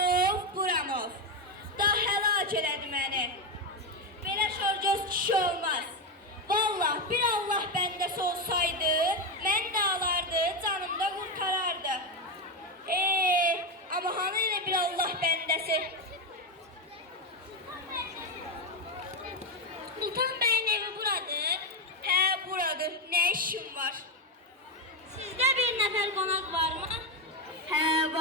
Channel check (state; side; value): normal; both; correlation 0.09